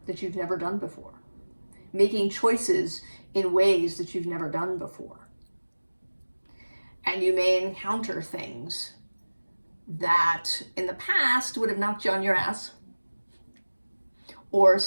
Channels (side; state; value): both; inverted; correlation -1.00